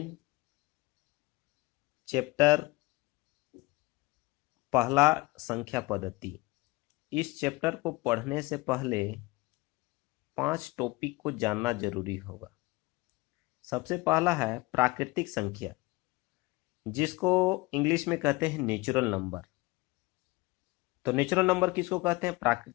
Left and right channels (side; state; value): right; quieter; 21.9 dB